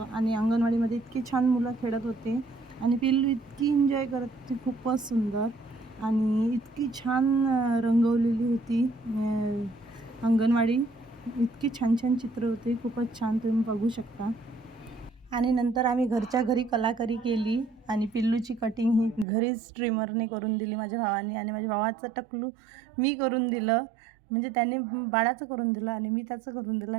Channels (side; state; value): left; drops out; at 19.2 s